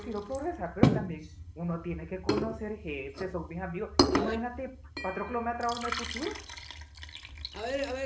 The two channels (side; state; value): both; identical; correlation 1.00